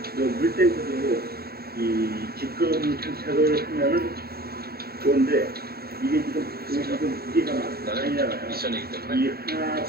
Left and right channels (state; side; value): late; left; 0.45 ms